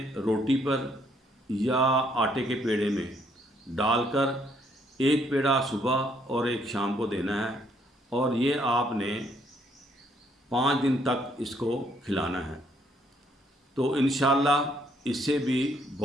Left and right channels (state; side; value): normal; both; correlation 0.69